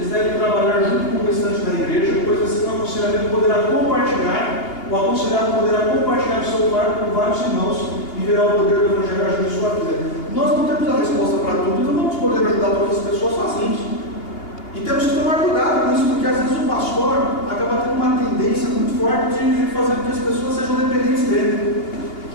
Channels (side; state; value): right; late; 2.8 ms